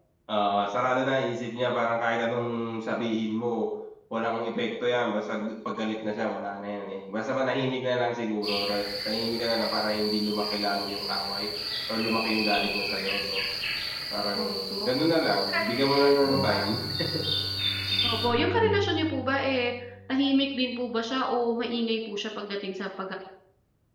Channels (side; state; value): both; identical; correlation 1.00